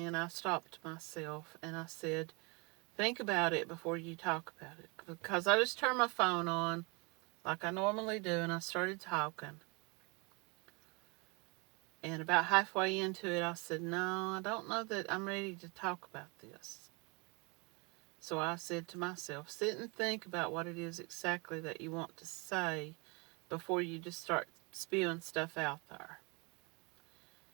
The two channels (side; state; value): left; quieter; 29.7 dB